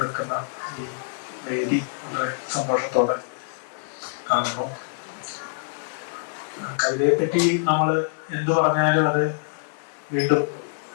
ഈ വേദി വളരെ സന്തോഷത്തോടെ കാണുന്നു. കവിതയെ പറ്റി നമ്മൾ എന്തു പറഞ്ഞാലും അത് വീണ്ടും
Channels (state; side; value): silent; right; 62 dB below the other